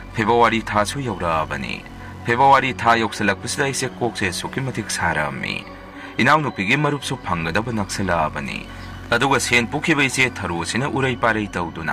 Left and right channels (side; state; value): both; identical; correlation 1.00